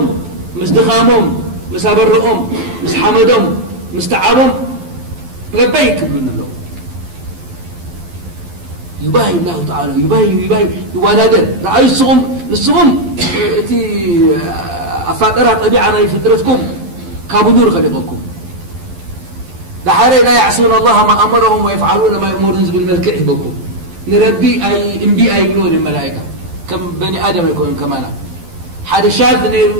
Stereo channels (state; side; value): late; left; 12 ms